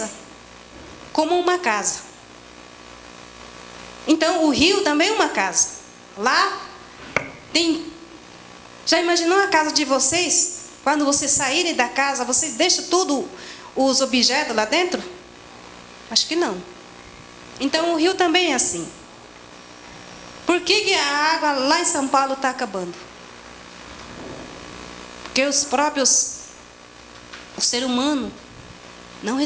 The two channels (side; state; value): both; identical; correlation 1.00